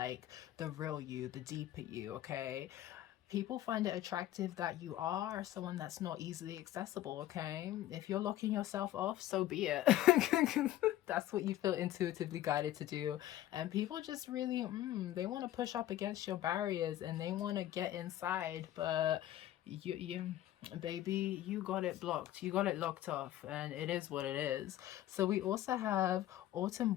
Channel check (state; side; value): quieter; right; 13.6 dB